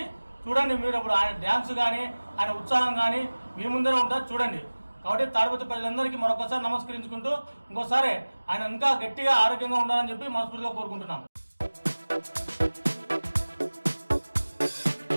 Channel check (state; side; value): inverted; both; correlation -1.00